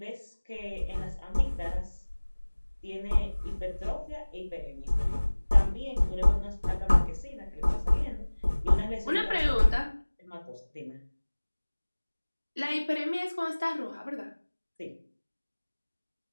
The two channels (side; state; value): both; inverted; correlation -1.00